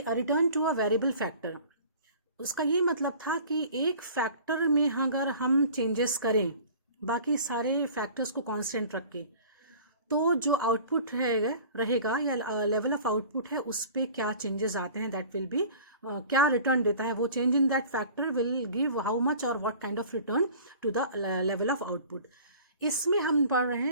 return to a variable factor, उसका ये मतलब था कि एक फैक्टर में अगर हम चेंजेस करें बाकी सारे फैक्टर्स को कांस्टेंट रख के, तो जो आउटपुट रहेगा या लेवल ऑफ आउटपुट है उस पर क्या चेंजेस आते हैं, दैट विल बी क्या रिटर्न देता है वो change in that factor will give how much और what kind of return to the level of output. इसमें हम पढ़ रहे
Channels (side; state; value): both; inverted; correlation -0.45